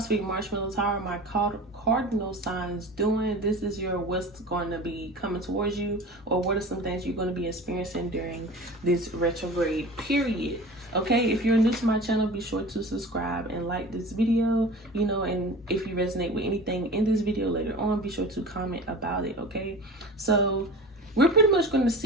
marshmallows. How are my cardinal signs doing? This is your what's going to be coming towards you, or what are some things you're going to be experiencing during this retrograde period. Okay, if you're new to my channel, be sure to subscribe and like this video, and if you resonate with anything in this video later on, be sure to comment about it. Okay, so we're pretty much going to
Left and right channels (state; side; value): normal; both; correlation 0.37